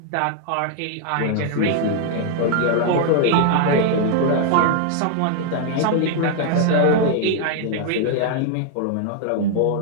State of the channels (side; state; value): both; different; correlation 0.00